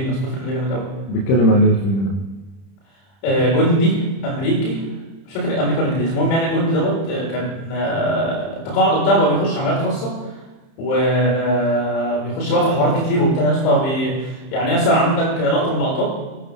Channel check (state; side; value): late; right; 30 ms